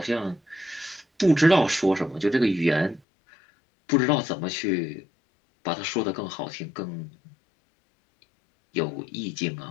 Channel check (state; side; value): drops out; right; at 3.0 s